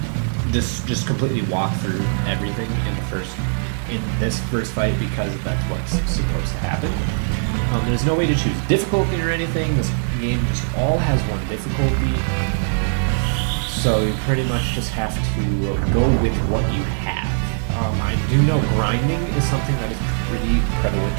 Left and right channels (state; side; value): silent; left; 65 dB below the other